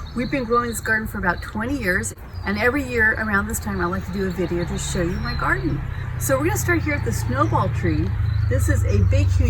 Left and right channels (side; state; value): both; identical; correlation 1.00